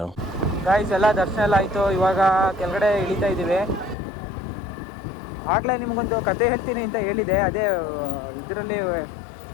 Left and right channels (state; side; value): drops out; right; at 4.0 s